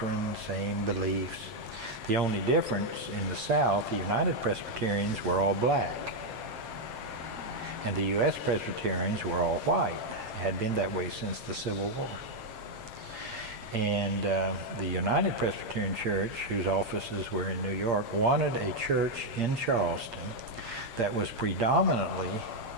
same beliefs. The only difference in the South, the United Presbyterians were all black. And the U.S. Presbyterians were all white. It had been that way since the Civil War. And the United Presbyterian Church, whose offices were in New York, wanted a church in Charleston that was predominantly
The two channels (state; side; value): late; left; 7.5 ms